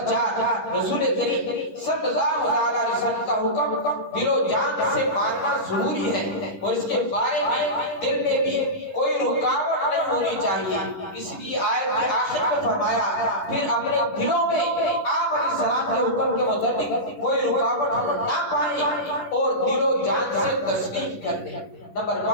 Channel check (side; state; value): right; late; 10 ms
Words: 4، رسول کریم صلی اللہ علیہ وسلم کا حکم دل و جان سے ماننا ضروری ہے اور اس کے بارے میں دل میں بھی کوئی رکاوٹ نہیں ہونی چاہیے۔ اس لیے آیت کے آخر میں فرمایا، پھر اپنے دلوں میں آپ علیہ السلام کے حکم کے متعلق کوئی رکاوٹ نہ پائیں اور دل و جان سے تسلیم کر دیں۔ نمبر